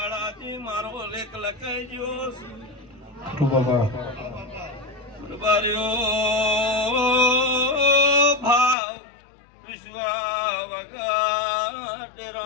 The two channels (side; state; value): right; drops out; at 8.8 s